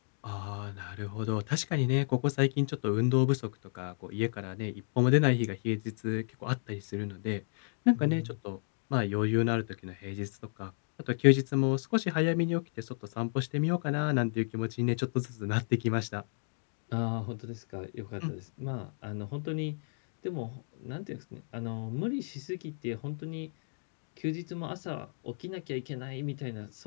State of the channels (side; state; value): right; silent; digital silence